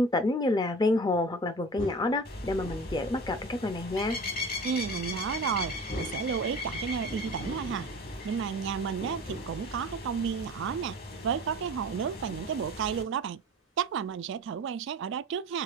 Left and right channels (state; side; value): normal; both; correlation 0.37